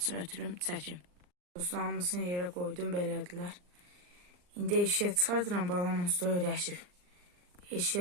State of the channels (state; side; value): late; left; 39 ms